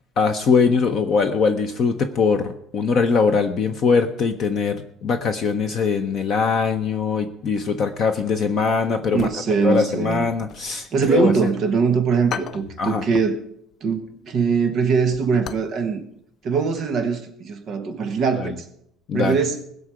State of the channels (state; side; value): normal; both; correlation 0.59